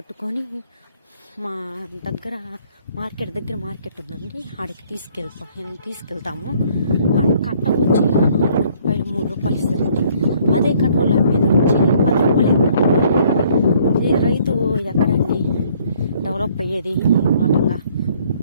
మా దగ్గర మార్కెట్ ఉందండి, ఆడికి తీసుకెళ్తాము. కట్ట వచ్చి రూపాయలు 3 రూపాయలు ఇస్తారండి. అదే కట్టలు మీద వచ్చి 10 రూపాయలు. ఇది రైతు ఎక్కడండి డెవలప్ అయ్యేది? వాటంగా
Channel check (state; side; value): inverted; both; correlation -0.62